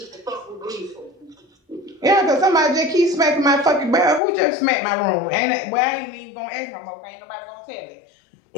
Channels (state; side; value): drops out; right; at 4.2 s